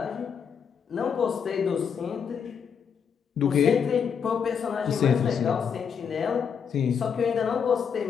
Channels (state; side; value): quieter; right; 7.0 dB